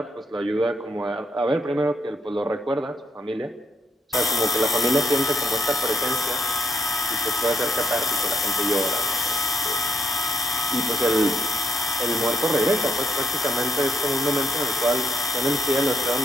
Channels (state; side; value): normal; both; correlation 0.75